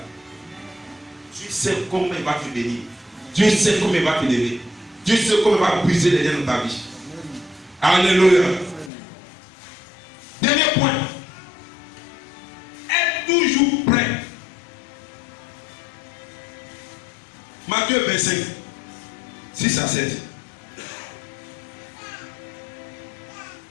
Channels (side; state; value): right; drops out; at 8.9 s